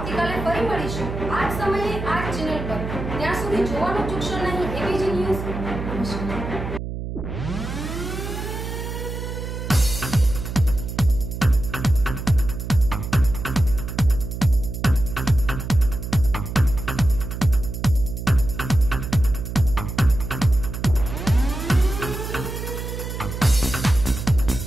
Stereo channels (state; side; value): noise; right; hum, 6 dB below the sound